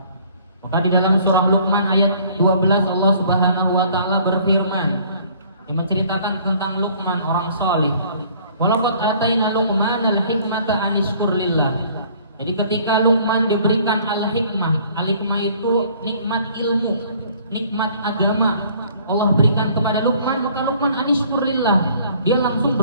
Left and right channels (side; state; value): both; inverted; correlation -0.56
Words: Maka di dalam surah Luqman ayat 12 Allah Subhanahu wa Ta'ala berfirman, yang menceritakan tentang Luqman orang saleh. Walaqad ataina Luqmanal hikmata an yashkur lillah. Jadi ketika Luqman diberikan al-hikmah, al-hikmah itu nikmat ilmu, nikmat agama, Allah berikan kepada Luqman, maka Luqman an yashkur lillah, dia langsung